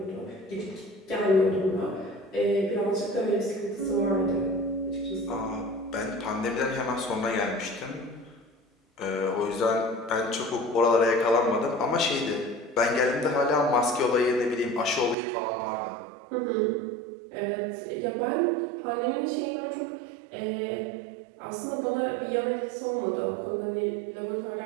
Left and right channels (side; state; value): left; drops out; at 15.2 s